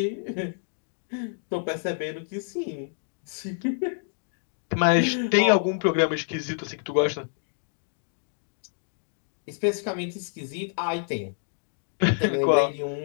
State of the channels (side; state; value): right; silent; digital silence